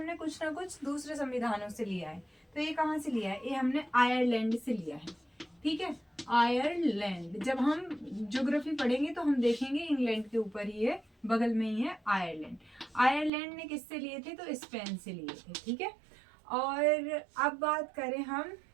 कुछ ना कुछ दूसरे संविधानों से लिया है। तो ये कहाँ से लिया है? ये हमने आयरलैंड से लिया है, ठीक है। आयरलैंड, जब हम ज्योग्राफी पढ़ेंगे तो हम देखेंगे इंग्लैंड के ऊपर ही है, बगल में ही है आयरलैंड। आयरलैंड ने किससे लिए थे? तो स्पेन से लिए थे, ठीक है। और अब बात करें हम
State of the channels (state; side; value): drops out; left; at 13.3 s